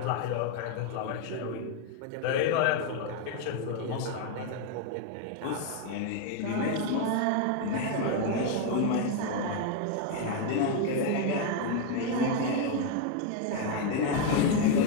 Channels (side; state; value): both; different; correlation 0.01